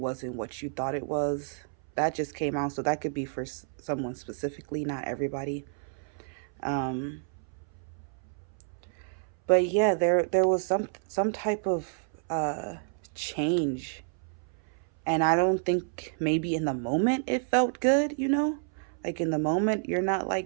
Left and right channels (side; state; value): left; silent; 58 dB below the other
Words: what you thought it was. That just came out, so that could be for someone specifically, not everybody. Um, but yeah, there was some type of change, and I don't think maybe in the moment it felt good, you know? Like in the moment you're not